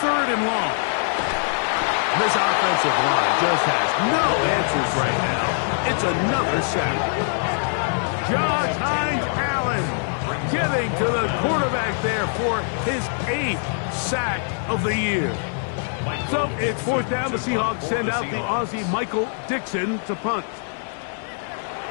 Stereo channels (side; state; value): right; silent; digital silence